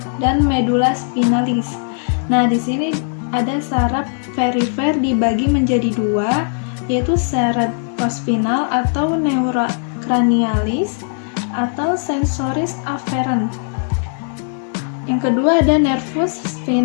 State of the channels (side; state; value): right; silent; 55 dB below the other